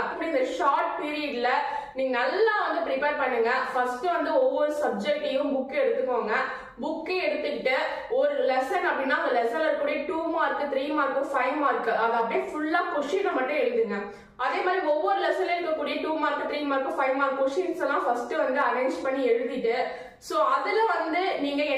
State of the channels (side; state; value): both; identical; correlation 1.00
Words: இப்படி இந்த ஷார்ட் பீரியட்ல நீங்க நல்லா ப்ரிப்பேர் பண்ணுங்க. ஃபர்ஸ்ட் ஒவ்வொரு சப்ஜெக்டையும் புக் எடுத்துக்கோங்க. புக்கை எடுத்துக்கிட்டு ஒரு லெசன் அப்படின்னா அந்த லெசன்ல இருக்கக்கூடிய 2 மார்க் 3 மார்க் 5 மார்க் அதை அப்படியே ஃபுல்லா கொஸ்டினை மட்டும் எழுதுங்க. அதே மாதிரி ஒவ்வொரு லெசன்ல இருக்கக்கூடிய 2 மார்க் 3 மார்க் 5 மார்க் கொஸ்டின்ஸ் எல்லாம் ஃபர்ஸ்ட் அரேஞ்ச் பண்ணி எழுதிட்டு சோ அதுல நீங்க